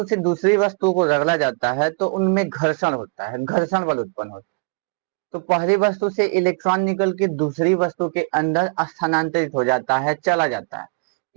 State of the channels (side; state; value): left; quieter; 35.3 dB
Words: से दूसरी वस्तु को रगड़ा जाता है तो उनमें घर्षण होता है, घर्षण बल उत्पन्न होता है। तो पहली वस्तु से इलेक्ट्रॉन निकल के दूसरी वस्तु के अंदर स्थानांतरित हो जाता है, चला जाता है।